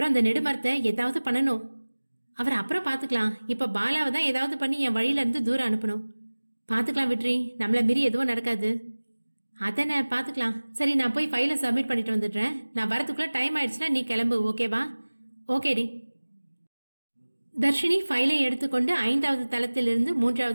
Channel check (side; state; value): both; inverted; correlation -1.00